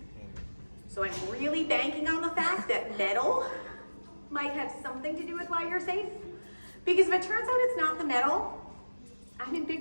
So I'm really banking on the fact that metal might have something to do with why you're safe. Because if it turns out it's not the metal, I'm in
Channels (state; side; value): inverted; both; correlation -1.00